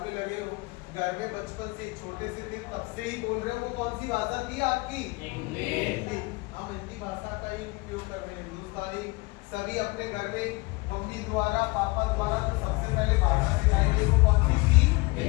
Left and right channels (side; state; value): right; quieter; 25.1 dB